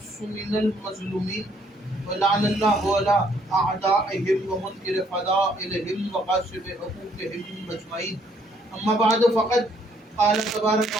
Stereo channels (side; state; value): both; normal; correlation 0.67